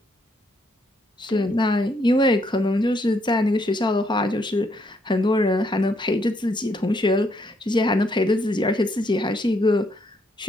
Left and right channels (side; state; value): both; normal; correlation 0.73